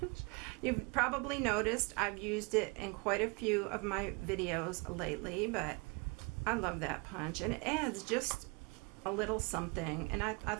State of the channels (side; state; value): left; quieter; 30.7 dB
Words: You've probably noticed I've used it in quite a few of my videos lately, but I love that punch, and it adds just a little something, and I